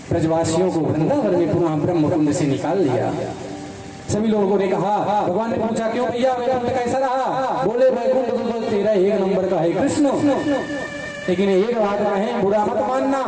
ब्रजवासियों को वृंदावन में पुनः ब्रह्मकुंड से निकाल लिया। सभी लोगों ने कहा, भगवान ने पूछा क्यों भैया वैकुंठ कैसा रहा? बोले वैकुंठ तो तेरा एक नंबर का है कृष्ण, लेकिन एक बात कहें बुरा मत मानना।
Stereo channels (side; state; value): both; identical; correlation 1.00